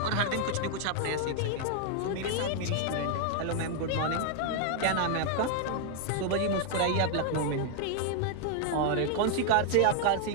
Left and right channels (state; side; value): different; both; correlation 0.00